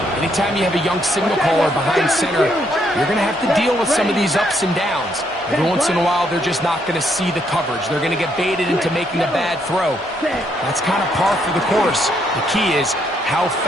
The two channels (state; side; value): normal; both; correlation 0.73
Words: anytime you have a young signal caller behind center, you're going to have to deal with some of these ups and downs. Every once in a while, they're just not going to see the coverage. They're going to get baited into making a bad throw. That's kind of par for the course. The key is how